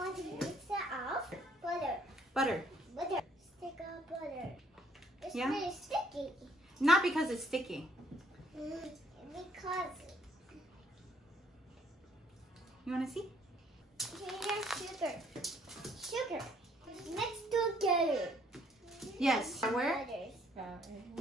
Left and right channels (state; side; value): normal; both; correlation 0.64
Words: want to mix it up. Butter. Butter. Butter. Stick of butter. It's Yeah? really sticky. Not because it's sticky. Because You want to see? here's sugar. Sugar. Mixed together. Yes. Flour,